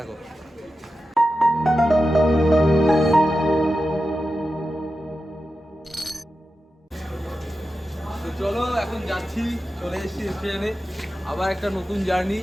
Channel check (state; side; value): normal; both; correlation 0.91